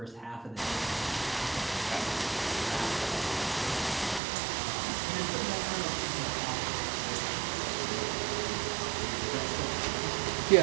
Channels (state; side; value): drops out; left; at 4.2 s